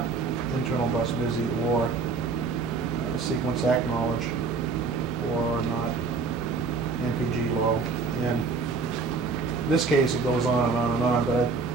internal bus busy, or sequence acknowledge, or not NPG low. And In this case, it goes on and on and on, but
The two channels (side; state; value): left; quieter; 4.5 dB